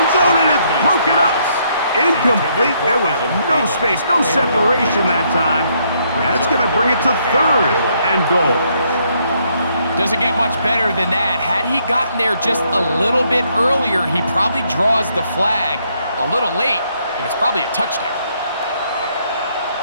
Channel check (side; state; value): both; inverted; correlation -0.71